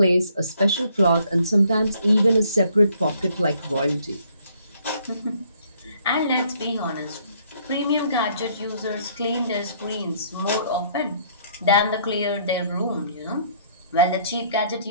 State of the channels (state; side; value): inverted; both; correlation -0.64